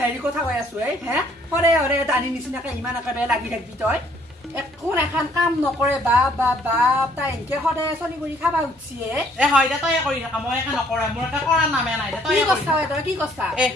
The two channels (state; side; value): normal; both; correlation 0.63